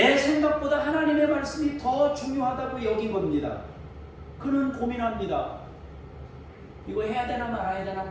생각보다 하나님의 말씀이 더 중요하다고 여긴 겁니다. 그는 고민합니다. 이거 해야 되나 말아야 되나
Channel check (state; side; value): identical; both; correlation 1.00